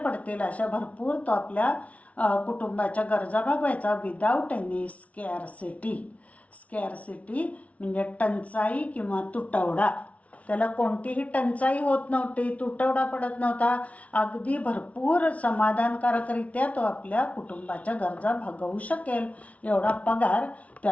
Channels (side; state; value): right; late; 0.066 ms